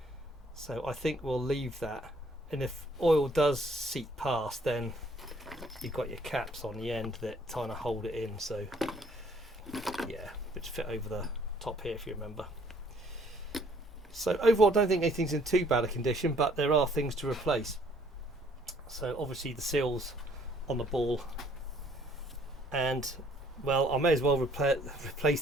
So I think we'll leave that, and if oil does seep past, then you've got your caps on the end that kind of hold it in, so yeah, which fit over the top here if you remember. So overall I don't think anything's in too bad a condition, but there are things to replace. So obviously the seals on the ball, and well, I may as well replace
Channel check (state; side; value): normal; both; correlation 0.61